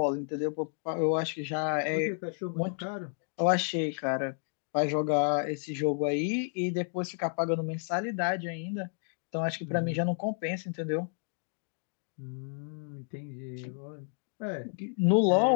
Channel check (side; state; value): right; silent; 57 dB below the other